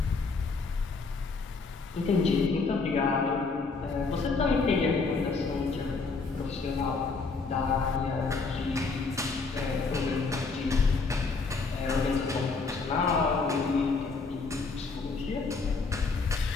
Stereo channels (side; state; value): right; quieter; 4.3 dB